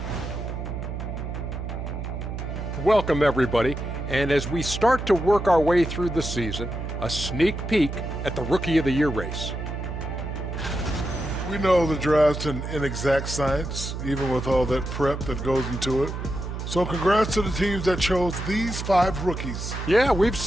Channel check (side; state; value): right; noise; hum, 6 dB below the sound